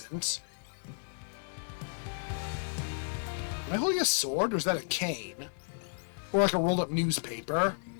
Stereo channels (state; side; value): silent; right; digital silence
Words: Am I holding a sword, or is that a cane? Or like a rolled up newspaper?